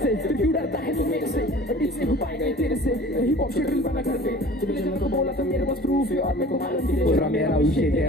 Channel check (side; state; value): both; normal; correlation 0.44